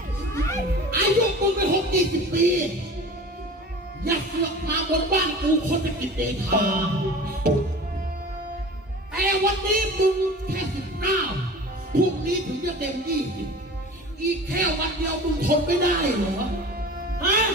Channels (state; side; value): normal; both; correlation 0.38